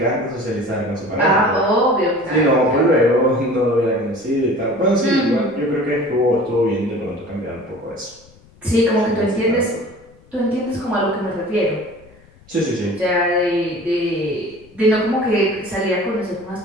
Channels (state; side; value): noise; left; rumble, 27 dB below the sound